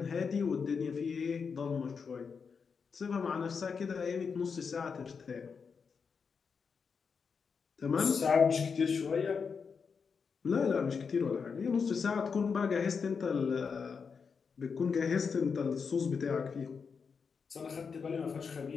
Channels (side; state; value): right; quieter; 5.7 dB